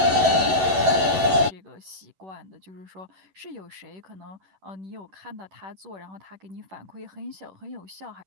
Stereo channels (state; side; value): late; left; 11 ms